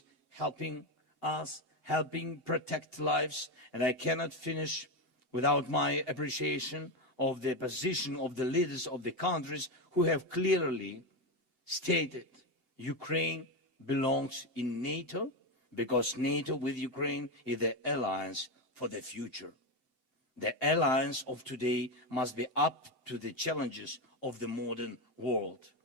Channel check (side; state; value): right; late; 7.8 ms